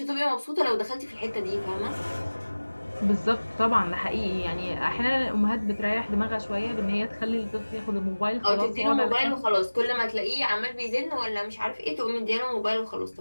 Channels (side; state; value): both; inverted; correlation -1.00